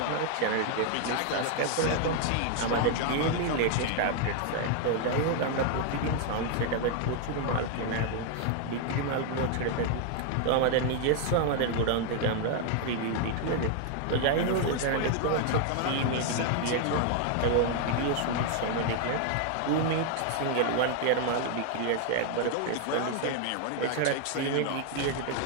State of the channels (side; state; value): both; different; correlation 0.00